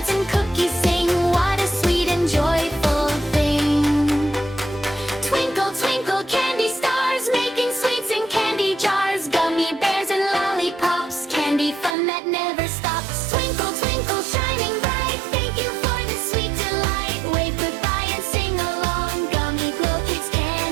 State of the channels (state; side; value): drops out; left; at 12.0 s